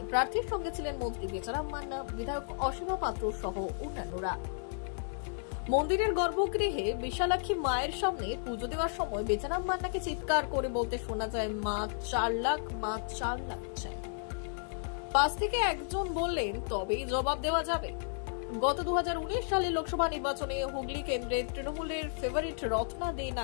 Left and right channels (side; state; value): right; silent; 56 dB below the other